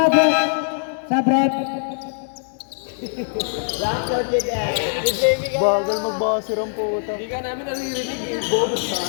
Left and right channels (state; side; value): silent; right; 62 dB below the other